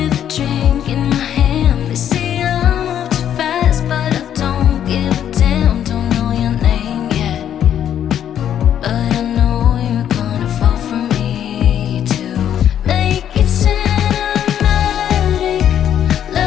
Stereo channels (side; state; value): right; quieter; 9.9 dB